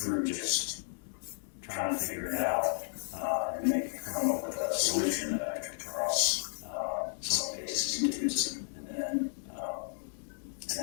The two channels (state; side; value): silent; right; 56 dB below the other